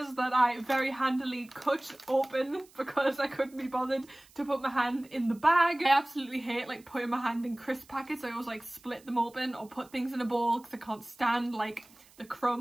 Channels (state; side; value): noise; right; hiss, 27 dB below the sound